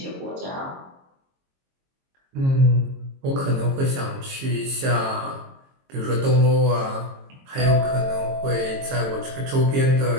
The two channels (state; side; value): late; left; 22 ms